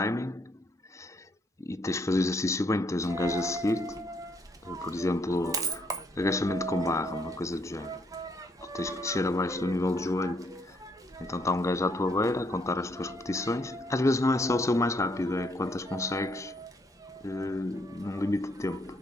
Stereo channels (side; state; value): both; normal; correlation 0.70